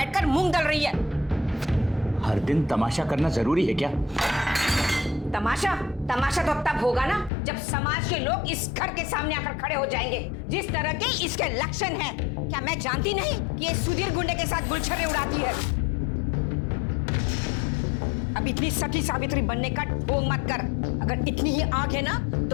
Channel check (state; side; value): drops out; right; at 7.3 s